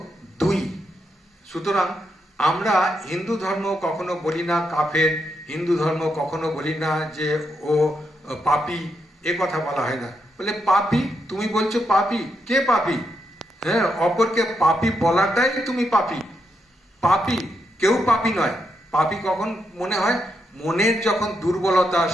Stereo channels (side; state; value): both; normal; correlation 0.81